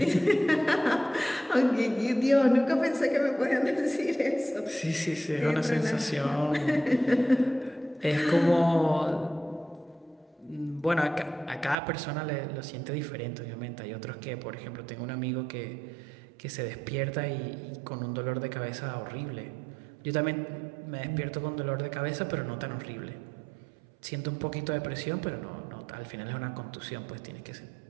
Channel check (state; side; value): drops out; left; at 11.8 s